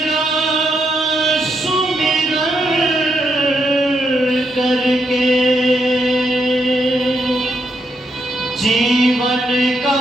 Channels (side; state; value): both; normal; correlation 0.79